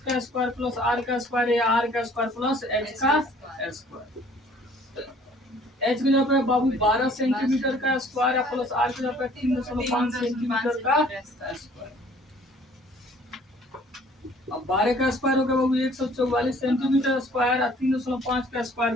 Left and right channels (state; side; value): normal; both; correlation 0.55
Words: का स्क्वायर प्लस आर का स्क्वायर या आर का स्क्वायर प्लस एच का स्क्वायर। एच की जगह पे बाबू 12 सेंटीमीटर का स्क्वायर है प्लस आर की जगह पे 3.5 सेंटीमीटर का स्क्वायर। अब 12 का स्क्वायर हो गया बाबू 144 सेंटीमीटर स्क्वायर, 3.5 का स्क्वायर